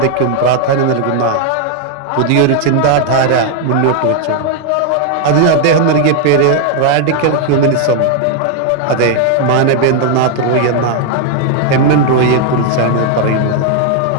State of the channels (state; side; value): different; both; correlation 0.00